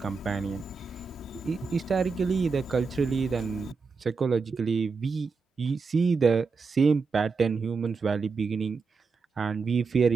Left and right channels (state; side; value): quieter; left; 4.8 dB